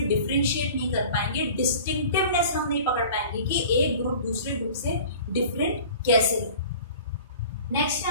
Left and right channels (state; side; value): inverted; both; correlation -0.43